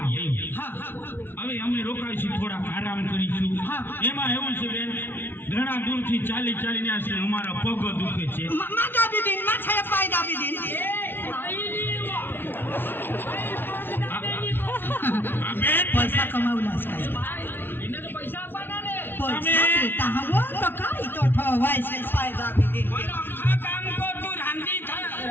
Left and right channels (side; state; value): right; late; 0.10 ms